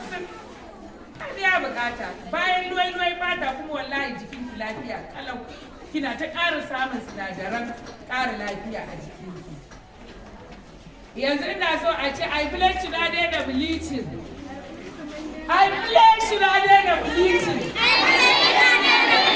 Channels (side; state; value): both; identical; correlation 1.00